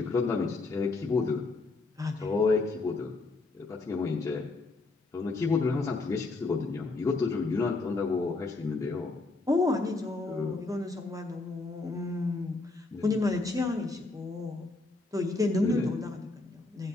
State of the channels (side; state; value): right; quieter; 3.5 dB